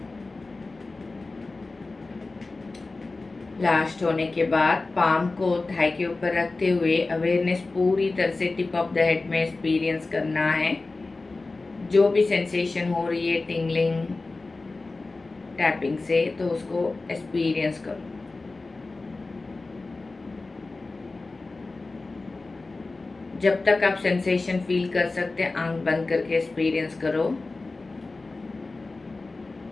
Last होने के बाद पाम को थाई के ऊपर रखते हुए अवेयरनेस पूरी तरह से टिप ऑफ द हेड में एक्सपीरियंस करना है। जो भी सेंसेशन हो रही है टिंगलिंग टैपिंग से, तो उसको एक्सपीरियंस करो। जब तक आप सेंसेशन फील कर सकते हैं आंख बंद करके एक्सपीरियंस करो।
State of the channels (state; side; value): quieter; right; 3.5 dB